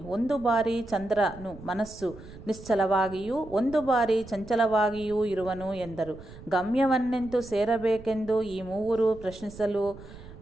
ಒಂದು ಬಾರಿ ಚಂದ್ರನು ಮನಸ್ಸು ನಿಶ್ಚಲವಾಗಿಯೂ ಒಂದು ಬಾರಿ ಚಂಚಲವಾಗಿಯೂ ಇರುವನು ಎಂದರು. ಗಮ್ಯವನ್ನೆಂತು ಸೇರಬೇಕೆಂದು ಈ ಮೂವರು ಪ್ರಶ್ನಿಸಲು,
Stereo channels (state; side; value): noise; right; rumble, 17 dB below the sound